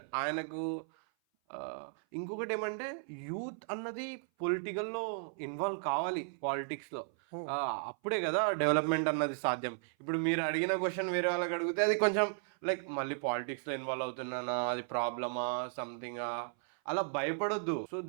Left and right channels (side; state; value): left; silent; 54 dB below the other